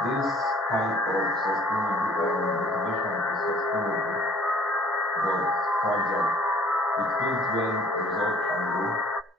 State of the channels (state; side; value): normal; both; correlation 0.55